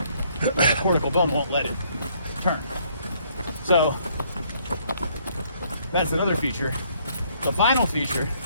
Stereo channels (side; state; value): both; inverted; correlation -0.66